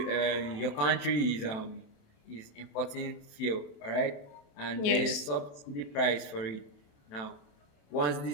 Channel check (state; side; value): late; right; 27 ms